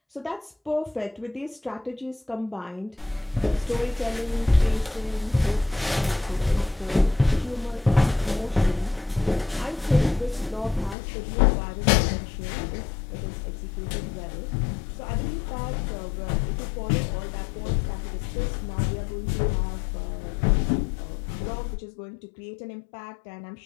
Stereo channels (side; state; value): right; drops out; at 11.0 s